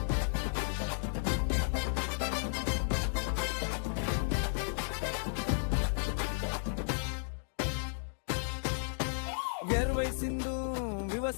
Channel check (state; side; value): silent; right; digital silence